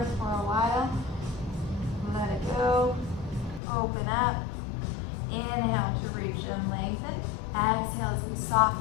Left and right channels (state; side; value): drops out; right; at 3.6 s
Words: for a while. Let it go. Open up. Inhale to reach and lengthen. Exhale as we